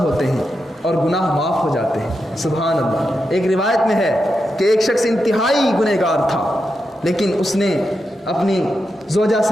ہیں اور گناہ معاف ہو جاتے ہیں۔ سبحان اللہ۔ ایک روایت میں ہے کہ ایک شخص انتہائی گنہگار تھا، لیکن اس نے اپنی زوجہ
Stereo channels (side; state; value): both; normal; correlation 0.87